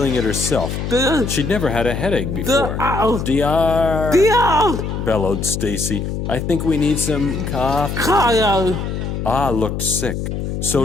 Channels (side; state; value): left; noise; hum, 4 dB below the sound